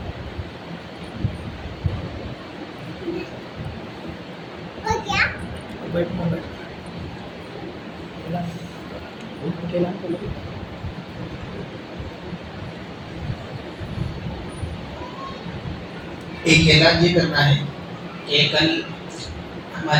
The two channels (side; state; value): both; identical; correlation 1.00